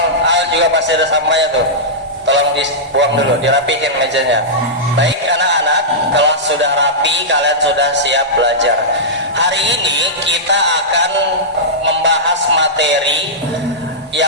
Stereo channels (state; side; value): normal; both; correlation -0.12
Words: juga masih ada sampahnya tuh. Tolong dibuang dulu, dirapihin mejanya. Baik anak-anak, kalau sudah rapi, kalian sudah siap belajar. Hari ini kita akan membahas materi